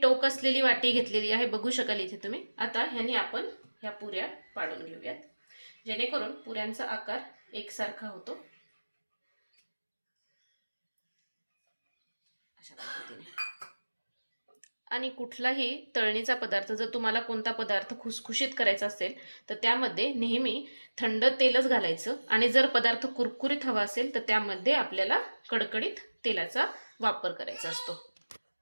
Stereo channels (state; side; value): inverted; both; correlation -1.00